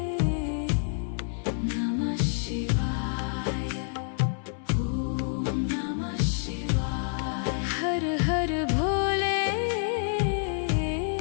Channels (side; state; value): right; silent; 59 dB below the other